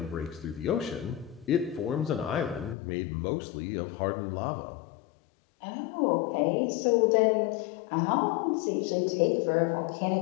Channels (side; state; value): right; drops out; at 2.8 s